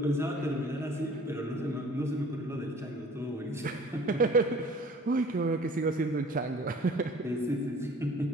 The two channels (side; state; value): both; normal; correlation 0.50